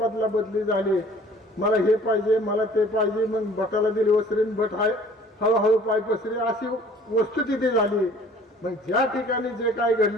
झाली, मला हे पाहिजे मला ते पाहिजे, मग भटाला दिली वसरीन भट हळूहळू पाय पसरी अशी वस्तुस्थिती झाली। मग ज्या ठिकाणी जे काय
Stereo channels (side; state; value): both; normal; correlation 0.52